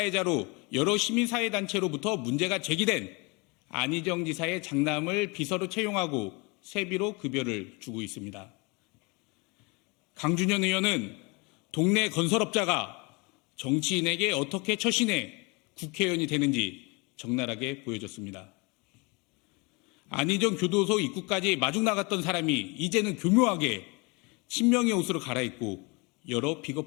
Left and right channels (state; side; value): quieter; right; 28.7 dB